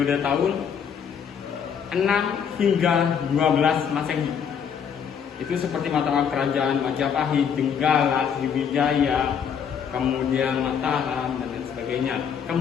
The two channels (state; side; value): quieter; right; 7.5 dB